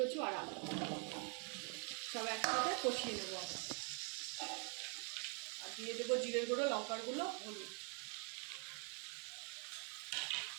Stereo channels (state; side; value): quieter; left; 37.9 dB